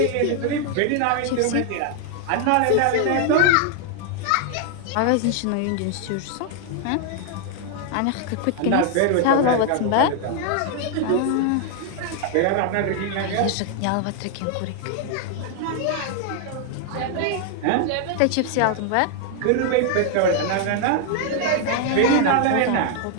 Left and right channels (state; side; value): different; both; correlation 0.00